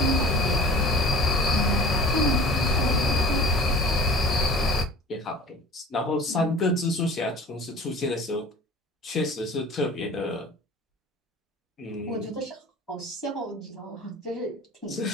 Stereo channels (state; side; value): normal; both; correlation 0.42